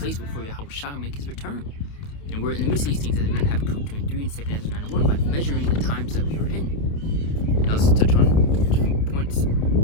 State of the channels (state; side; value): late; right; 28 ms